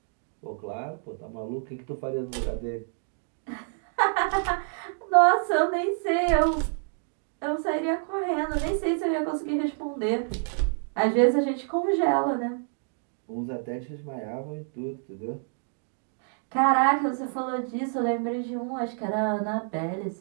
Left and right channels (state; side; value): silent; left; 59 dB below the other